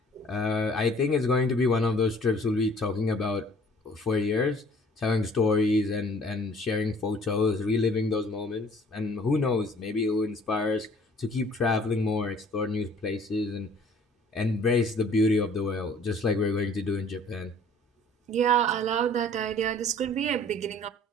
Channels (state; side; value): normal; both; correlation 0.54